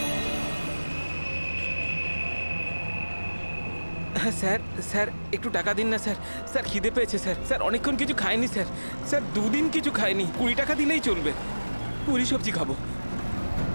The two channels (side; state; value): both; inverted; correlation -1.00